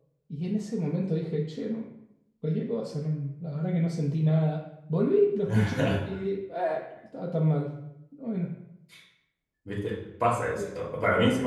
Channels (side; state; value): both; identical; correlation 1.00